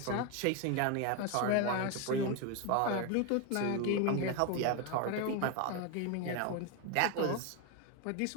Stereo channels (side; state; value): both; different; correlation 0.02